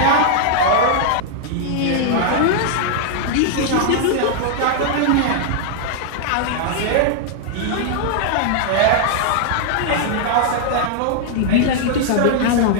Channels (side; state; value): both; different; correlation -0.01